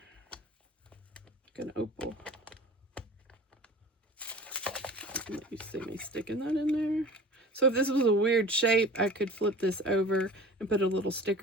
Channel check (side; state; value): both; normal; correlation 0.41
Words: an opal. Let you see me sticking that in there. So if this was a weird shape, I could flip this over and put a little